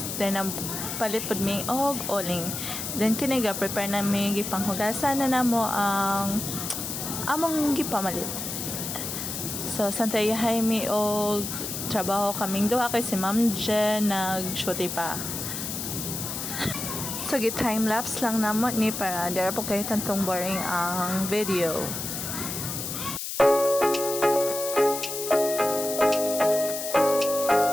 Then ang palit pod mi og oling. Then kini ga prepare na mi gipanghugasan na namo ang among gipamalit. So santayahay mi og trabaho kaming duha kay si Ma'am Jen nag-shoot pa. So time lapse lang namo ni para dira po kay tantong boring ang video.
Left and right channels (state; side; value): noise; left; hiss, 5 dB below the sound